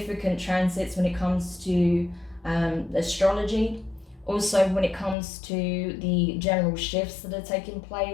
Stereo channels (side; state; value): right; drops out; at 5.2 s